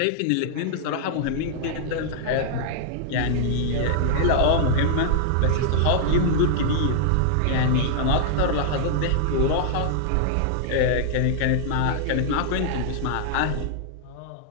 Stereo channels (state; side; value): different; both; correlation -0.01